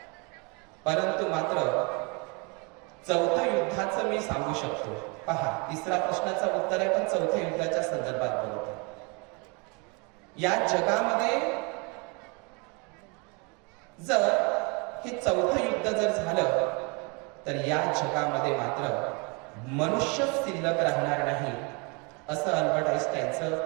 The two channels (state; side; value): quieter; left; 31.3 dB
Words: परंतु मात्र चौथं युद्धाचं मी सांगू शकतो. पहा, तिसरा प्रश्नाचं उत्तर आहे, पण चौथ्या युद्धाच्या संदर्भात बोलतो. या जगामध्ये जर हे चौथं युद्ध जर झालं, तर या जगामध्ये मात्र मनुष्य शिल्लक राहणार नाही, असं अल्बर्ट